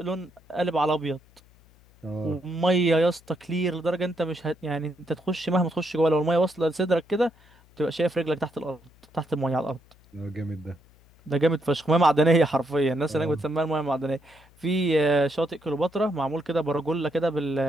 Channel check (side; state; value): left; noise; hum, 29 dB below the sound